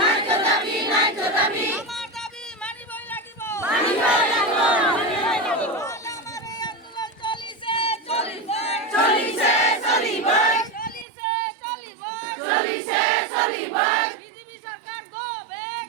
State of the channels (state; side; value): drops out; left; at 11.1 s